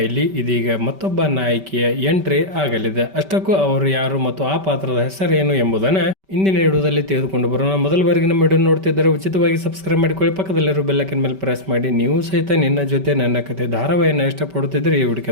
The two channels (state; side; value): late; left; 5.2 ms